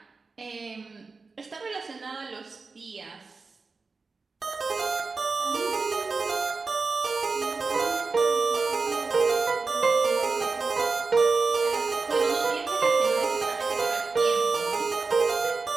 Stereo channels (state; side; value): quieter; left; 4.2 dB